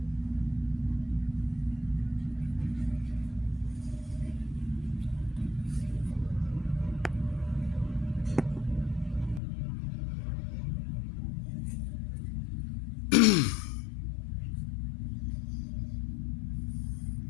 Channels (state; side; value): drops out; right; at 9.4 s